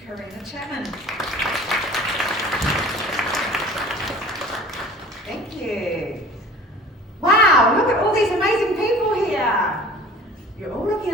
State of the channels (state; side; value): normal; both; correlation 0.45